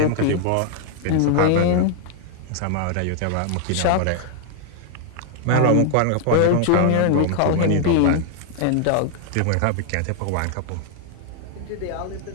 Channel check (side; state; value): both; different; correlation 0.00